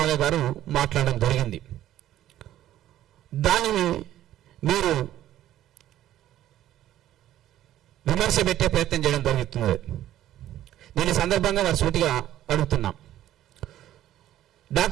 గారు మాట్లాడడం జరిగింది. దానిని మీరు విమర్శ పెట్టే ప్రయత్నం చేయడం జరుగుతుంది. నేను ఈ సందర్భంగా వారి సూటిగా అడుగుతున్నాం.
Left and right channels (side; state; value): left; quieter; 12.8 dB